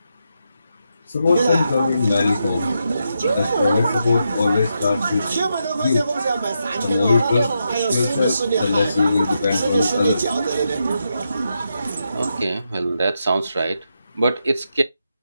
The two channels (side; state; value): both; inverted; correlation -0.84